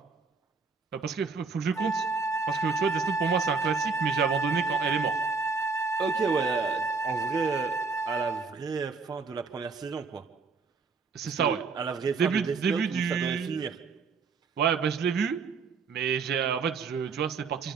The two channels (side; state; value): left; quieter; 4.8 dB